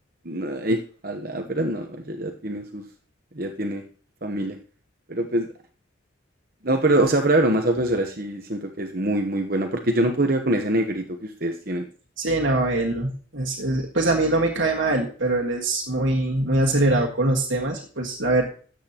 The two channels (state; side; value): normal; both; correlation 0.30